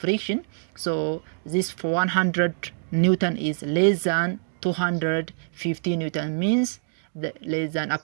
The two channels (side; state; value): left; silent; digital silence